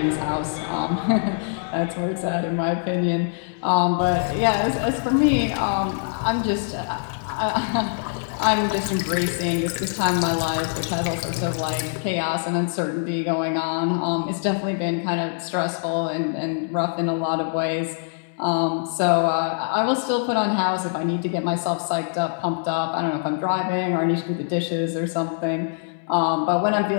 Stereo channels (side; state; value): right; silent; 63 dB below the other